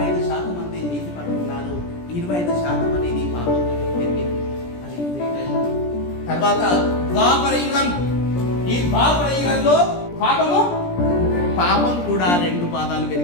మంది నీతి పరులు, 25% అనేది పాపం జరిగింది. అది త్రేతాయుగం. తర్వాత ద్వాపర యుగం. ఈ ద్వాపర యుగంలో పాపం కూడా 2 పాదాలు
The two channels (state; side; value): late; right; 17 ms